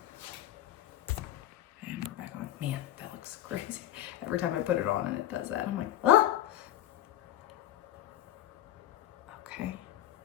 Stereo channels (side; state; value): right; quieter; 13.0 dB